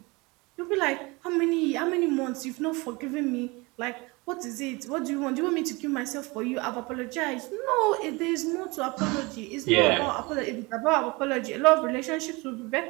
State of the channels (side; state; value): left; quieter; 25.3 dB